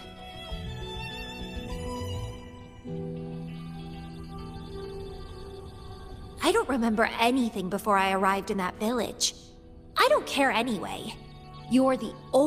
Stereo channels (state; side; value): identical; both; correlation 1.00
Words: I don't remember anything before I arrived in that village. I don't care anyway. You're the